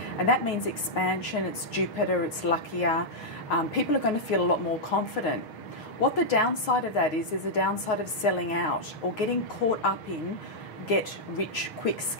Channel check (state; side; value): late; right; 6.4 ms